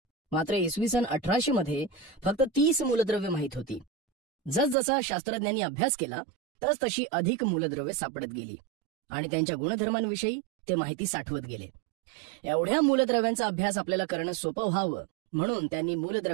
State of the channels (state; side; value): drops out; left; at 4.8 s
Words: मात्र इसवी सन 1800 मध्ये फक्त 30 मूलद्रव्ये माहीत होती. जसजसा शास्त्रज्ञांनी अभ्यास केला तसतशी अधिक मूलद्रव्ये सापडत गेली आणि त्यांच्या गुणधर्मांविषयी ते माहिती साठवत गेले. एवढ्या मूलद्रव्यांचा अभ्यास आपल्याला करणं सोपं व्हावं म्हणून त्यांनी